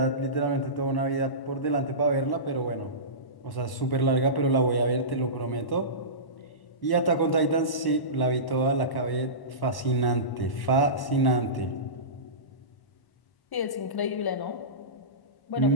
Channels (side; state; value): right; late; 1.1 ms